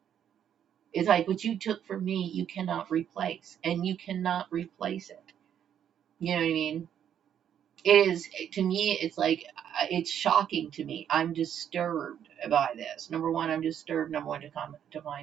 It's like what you took from me, you cannot replace, and you cannot replace it. You know what I mean? It is, to me, it's like, it's shocking to me. I'm disturbed by this. Number one, I'm disturbed. Number one, to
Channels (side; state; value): left; quieter; 9.3 dB